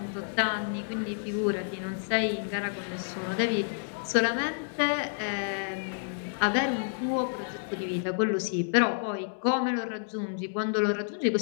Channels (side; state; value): right; silent; digital silence